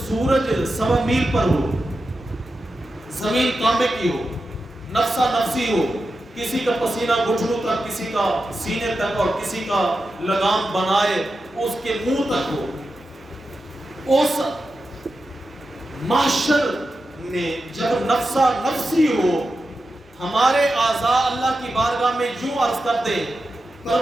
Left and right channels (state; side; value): normal; both; correlation 0.90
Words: سورج 1.25 میل پر ہو، زمین کانپے کی ہو، نفسا نفسی ہو، کسی کا پسینہ گھٹنوں تک، کسی کا سینے تک، اور کسی کا لگام بنائے اس کے منہ تک ہو، اس محشر میں جب نفسا نفسی ہو، ہمارے اعضاء اللہ کی بارگاہ میں یوں عرض کرتے،